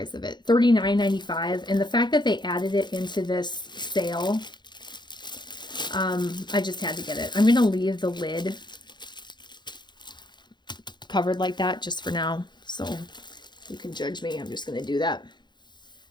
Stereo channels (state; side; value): late; right; 0.21 ms